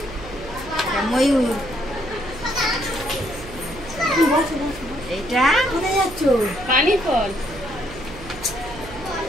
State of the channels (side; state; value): right; noise; hum, 15 dB below the sound